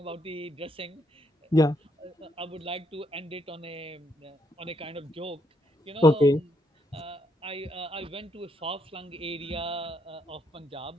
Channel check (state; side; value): normal; both; correlation 0.75